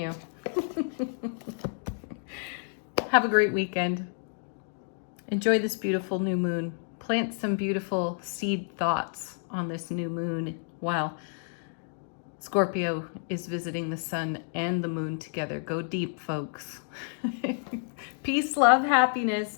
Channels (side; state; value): right; silent; digital silence